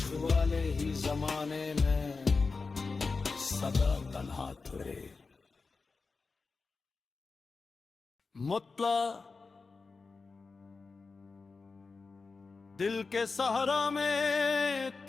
वाले ही जमाने में सदा तन्हा ठहरे। मुतला दिल के सहारा में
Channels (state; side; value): quieter; right; 4.3 dB